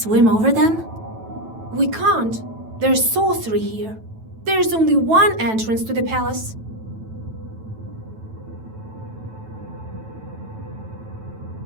swim over them? We can't. There's sorcery here. There's only one entrance to the palace.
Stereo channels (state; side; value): late; left; 9.1 ms